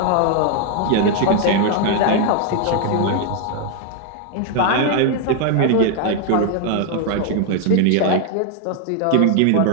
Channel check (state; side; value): different; both; correlation 0.00